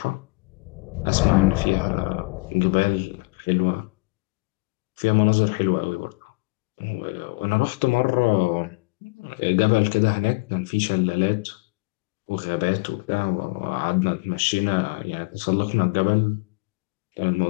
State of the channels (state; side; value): quieter; right; 26.4 dB